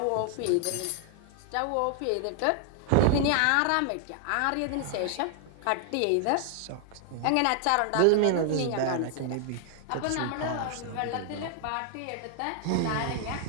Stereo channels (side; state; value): both; different; correlation 0.00